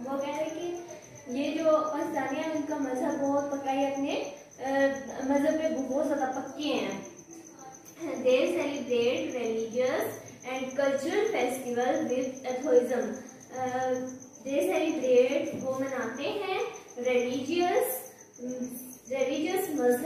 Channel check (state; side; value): identical; both; correlation 1.00